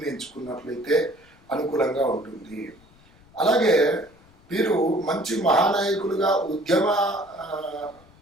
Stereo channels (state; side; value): noise; left; rumble, 28 dB below the sound